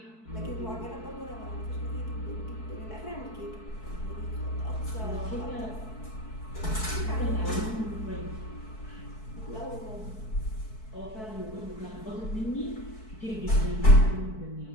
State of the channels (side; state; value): right; late; 4.6 ms